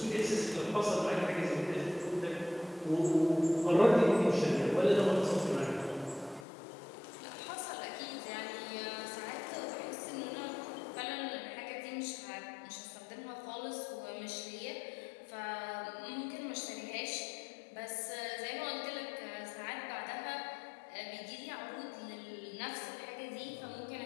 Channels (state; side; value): drops out; right; at 6.5 s